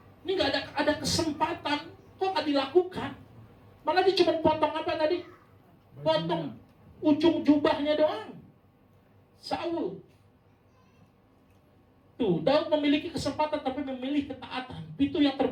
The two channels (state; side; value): identical; both; correlation 1.00